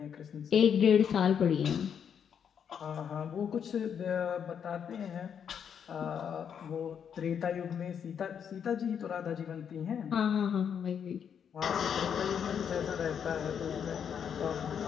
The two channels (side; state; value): right; quieter; 7.8 dB